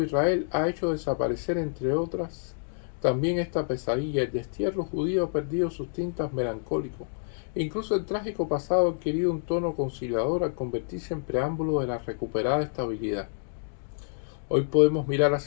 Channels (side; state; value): right; silent; digital silence